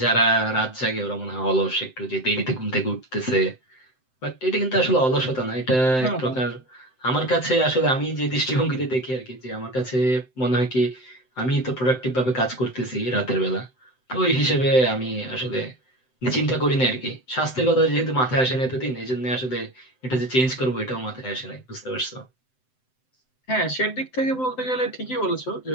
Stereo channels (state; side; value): late; right; 7.8 ms